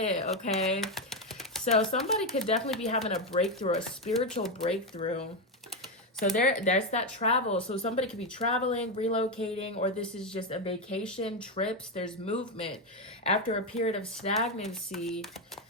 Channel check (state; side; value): normal; both; correlation 0.08